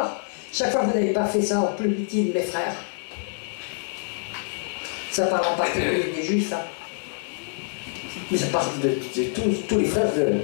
Chaque fois que vous n'avez pas fait ça en plus petit de mes frères. Ça parle en particulier des Juifs, hein. Mais ça parle de tous les frères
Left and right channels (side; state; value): right; silent; digital silence